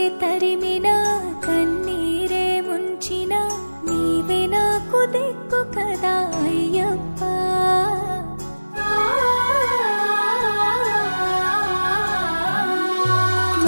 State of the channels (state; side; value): inverted; both; correlation -1.00